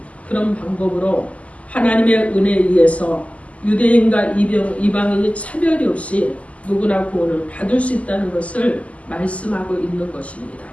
그런 방법으로 하나님의 은혜에 의해서 유대인과 이방인이 차별이 없이 누구나 구원을 받을 수 있다는 것을 말씀하고 있는 것입니다.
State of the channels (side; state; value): right; late; 0.067 ms